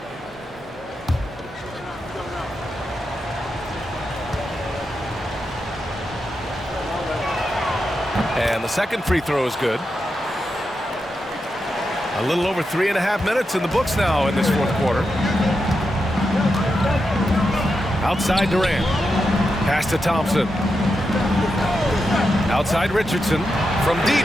And the second free throw is good. A little over 3.5 minutes in the books now in this fourth quarter. Outside Durant. Pass to Thompson. Outside Richardson. From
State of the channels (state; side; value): normal; both; correlation 0.87